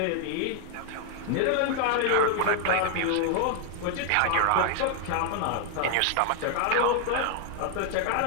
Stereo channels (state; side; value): different; both; correlation 0.00